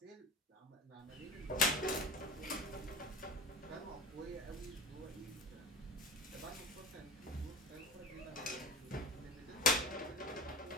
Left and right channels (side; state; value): both; normal; correlation 0.31